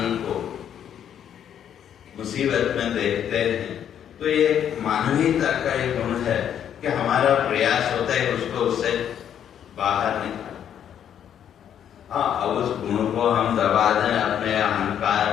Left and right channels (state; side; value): quieter; right; 9.4 dB